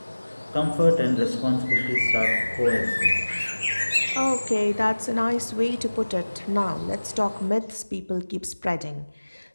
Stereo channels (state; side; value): inverted; both; correlation -1.00